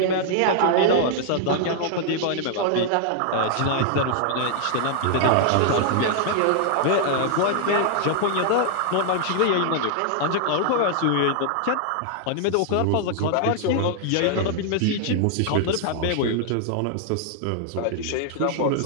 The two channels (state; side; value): different; both; correlation 0.00